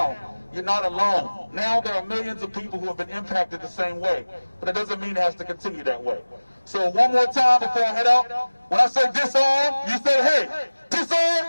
you're not alone. Now there are millions of people who have been impacted the same way. But it doesn't mean it has to continue that way. So one more time before I head out, when I say disarm, you say hey. Disarm!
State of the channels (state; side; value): inverted; both; correlation -1.00